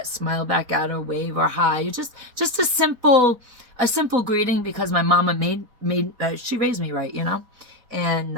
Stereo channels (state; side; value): late; left; 4.1 ms